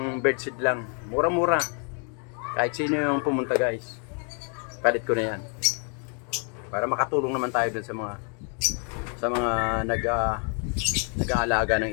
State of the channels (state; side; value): quieter; right; 39.7 dB